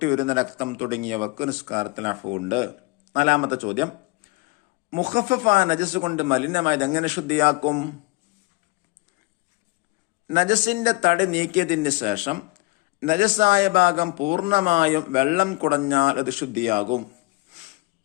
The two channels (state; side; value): quieter; right; 23.2 dB